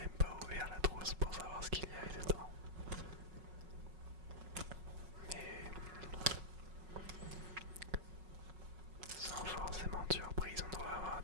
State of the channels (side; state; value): left; late; 5.4 ms